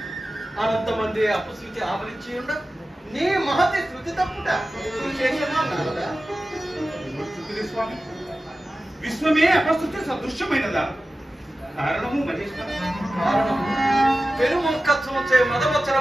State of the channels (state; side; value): normal; both; correlation 0.95